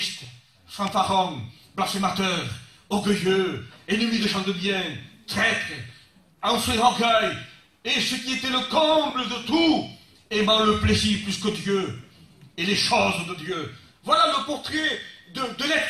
fanfarons, blasphémateurs, orgueilleux, ennemis des gens de bien, traîtres, enflés d'orgueil, et ce qui était le comble de tout, aimant le plaisir plus que Dieu, et les choses de Dieu. Voilà le portrait de l'être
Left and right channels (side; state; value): both; identical; correlation 1.00